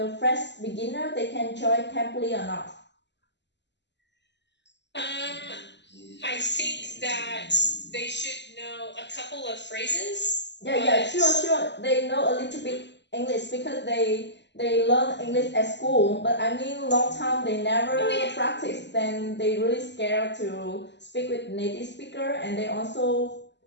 fresh beginner, they can join Cambly or not? I think that they should know a couple of phrases. Yeah, sure. They know a little bit English because they learn English at school. But I mean, long time they never practice. Then they really scared to speak with native speaker, and they also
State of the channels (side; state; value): right; late; 0.51 ms